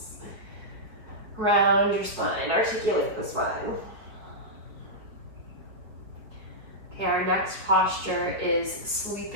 Round your spine, articulate the spine. Okay, our next posture is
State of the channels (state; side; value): late; left; 4.6 ms